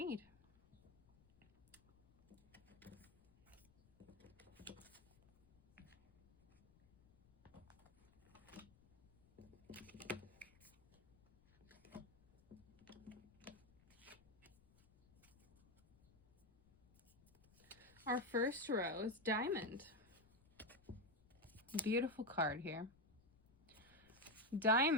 Our first row is diamond. Beautiful card here.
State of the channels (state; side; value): noise; left; rumble, 28 dB below the sound